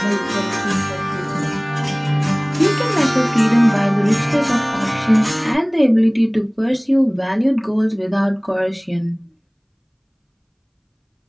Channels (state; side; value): identical; both; correlation 1.00